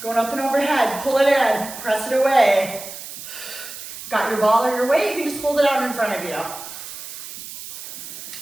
Going up and overhead, pull it in, press it away. Got your ball or your weight, you can just hold it out in front of you.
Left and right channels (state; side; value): noise; right; hiss, 11 dB below the sound